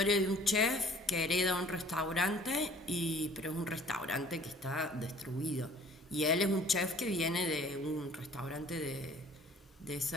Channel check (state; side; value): normal; both; correlation 0.53